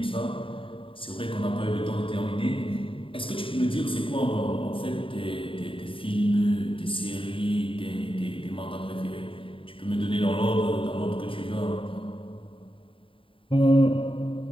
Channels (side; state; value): right; late; 0.25 ms